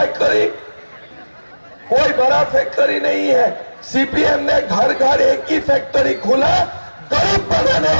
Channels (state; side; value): inverted; both; correlation -1.00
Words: कोई बड़ा फैक्ट्री नहीं है। सीपीएम ने घर घर एक ही फैक्ट्री खोला, गरीब बनाने